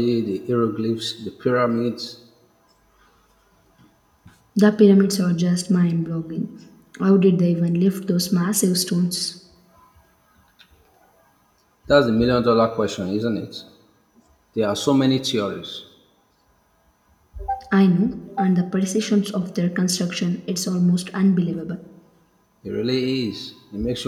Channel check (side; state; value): both; identical; correlation 1.00